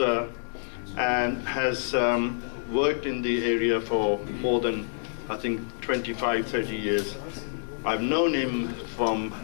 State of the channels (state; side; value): silent; right; digital silence